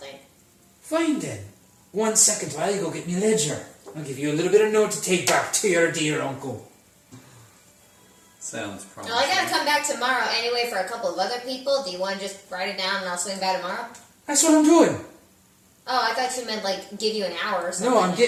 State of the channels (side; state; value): both; identical; correlation 1.00